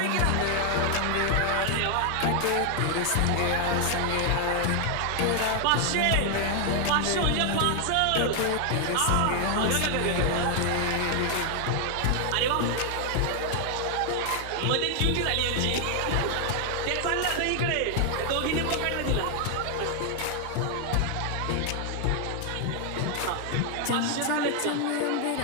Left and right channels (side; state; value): both; different; correlation 0.00